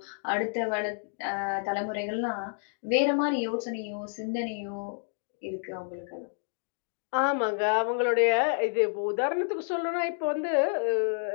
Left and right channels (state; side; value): silent; right; digital silence